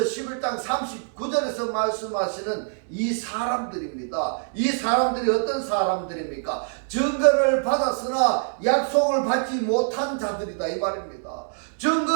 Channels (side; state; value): left; silent; digital silence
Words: 39절에서 말씀하시는 이 사람들입니다. 이 사람들이 어떤 사람들입니까? 증거를 받았으나 약속을 받지 못한 자들이다 이 말입니다.